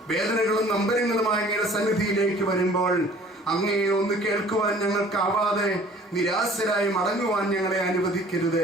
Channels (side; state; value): both; normal; correlation 0.51